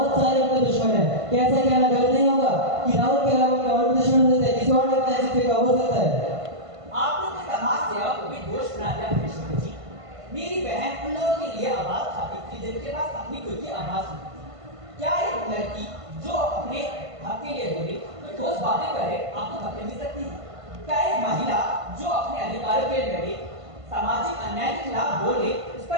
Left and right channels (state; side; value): late; left; 1.5 ms